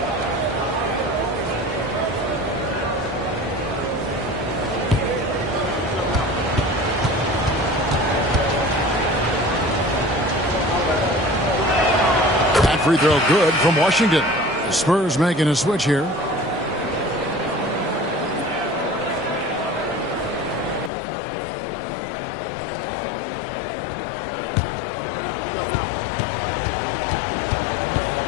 free throw good from Washington. The Spurs making a switch here.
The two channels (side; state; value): right; drops out; at 20.9 s